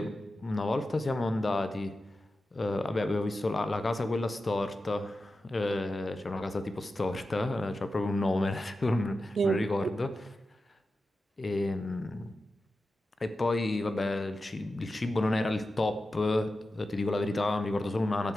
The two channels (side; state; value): both; normal; correlation 0.92